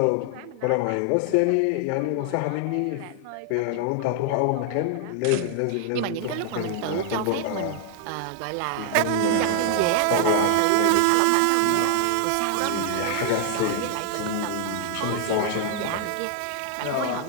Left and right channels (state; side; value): different; both; correlation 0.00